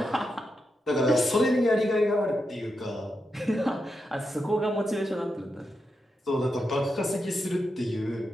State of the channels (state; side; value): normal; both; correlation 0.86